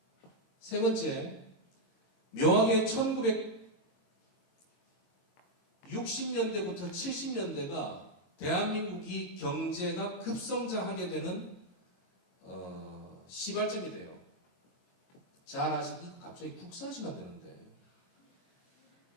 세 번째, 묘하게 1960년대부터 70년대가 대한민국이 경제가 급성장하게 되는 시발점이 돼요. 잘 아시고 갑자기 국사하시면 되는데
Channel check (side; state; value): right; late; 22 ms